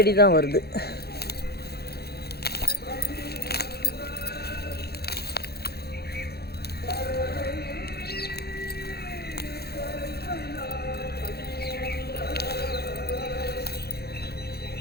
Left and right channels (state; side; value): late; right; 0.46 ms